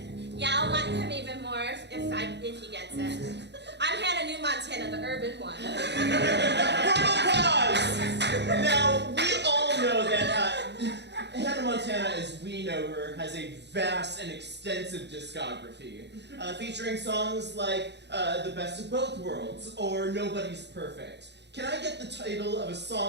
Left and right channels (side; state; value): left; late; 0.50 ms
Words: Yeah, I'll like him even more if he gets it. I'm Hannah New Montana, the urban one. Portal-Prov! Now, know her, has a vast and extensive discography, featuring songs like The Best of Both Worlds or Nobody's Perfect. Can I get the title of a